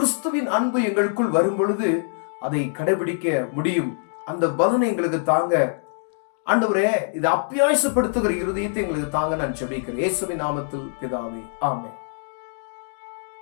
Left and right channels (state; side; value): silent; right; digital silence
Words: அன்பு எங்களுக்குள் வரும் பொழுது அதை கடைபிடிக்க முடியும். அந்த பலனை எங்களுக்கு தாங்க ஆண்டவரே. இதை அப்பியாசப்படுத்துகிற இருதயத்தை எங்களுக்கு தாங்க நான் ஜெபிக்கிறேன். இயேசுவின் நாமத்தில் பிதாவே, ஆமென்.